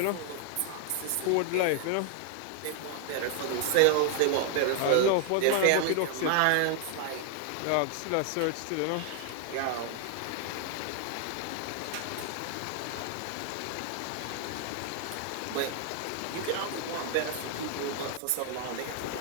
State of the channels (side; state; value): both; different; correlation 0.00